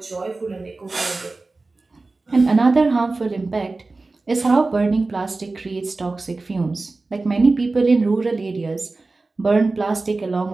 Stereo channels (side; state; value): left; quieter; 3.5 dB